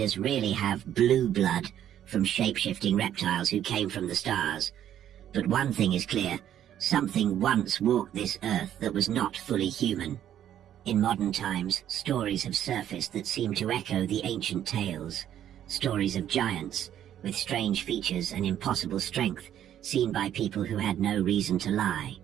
really have blue blood from shape-shifting reptiles who came from the stars. But one thing is clear, something once walked this earth that was not fully human. In modern times, stories have surfaced that seem to echo the ancient tales. Stories of giants, with strange features and impossible strength, seen by people who had no reason to lie.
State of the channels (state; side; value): quieter; left; 10.8 dB